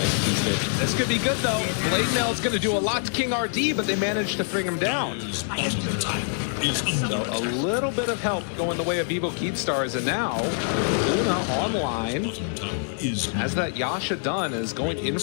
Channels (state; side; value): silent; right; 62 dB below the other